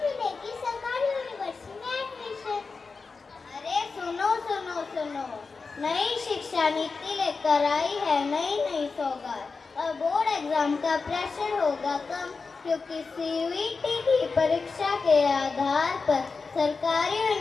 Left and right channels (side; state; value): right; quieter; 4.5 dB